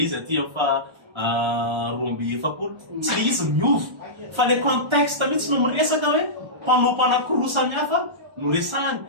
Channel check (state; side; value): late; left; 1.4 ms